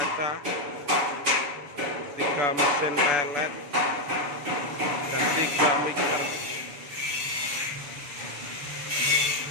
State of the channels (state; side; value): late; left; 6.9 ms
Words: 3 mesin pelet, dan 3 mixer.